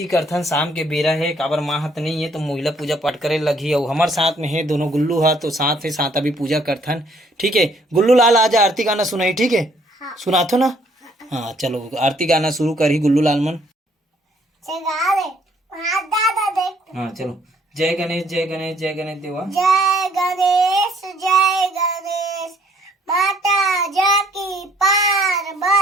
करथन शाम के बेरा है काबर माँ हाथ नहीं है तो महिला पूजा पाठ करे लगी और हमारे साथ में है दोनों गुल्लू हा तो साथ है साथ अभी पूजा करथन। ठीक है गुल्लू लाल आज आरती गाना सुनाई। ठीक है हाँ। सुनाथो ना। हाँ चलो आरती गाना शुरू करी गुल्लू लाल मन। हाँ चलो जय गणेश जय गणेश जय गणेश देवा। जय गणेश माता जाकी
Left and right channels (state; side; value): normal; both; correlation 0.64